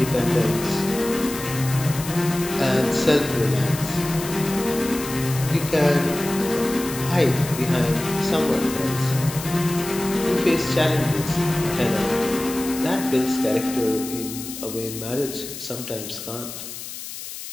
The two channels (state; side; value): noise; left; hiss, 10 dB below the sound